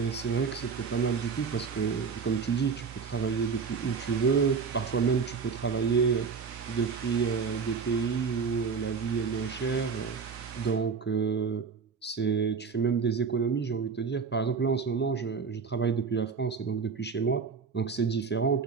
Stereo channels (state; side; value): quieter; left; 5.6 dB